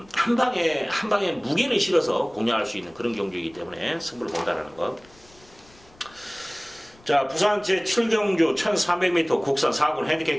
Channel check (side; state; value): left; noise; rumble, 27 dB below the sound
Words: 한 방에 무게를 실어서 공략할 수 있는 그런 경주이기 때문에 승부를 본다라는 것. 자, 부산 제7경주 1300m 국산 4군 핸디캡